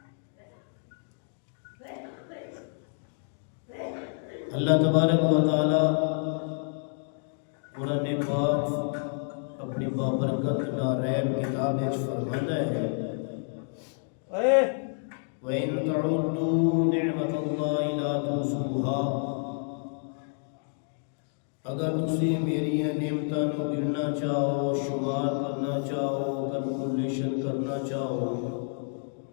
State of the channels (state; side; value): silent; right; 59 dB below the other